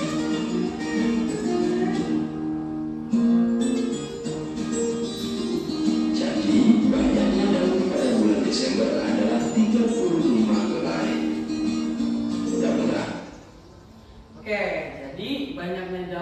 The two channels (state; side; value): identical; both; correlation 1.00